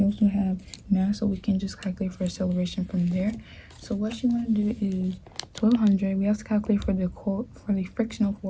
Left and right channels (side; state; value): both; identical; correlation 1.00